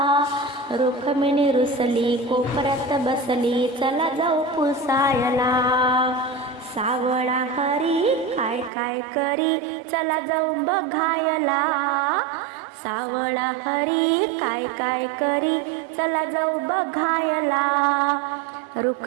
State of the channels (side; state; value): left; drops out; at 8.7 s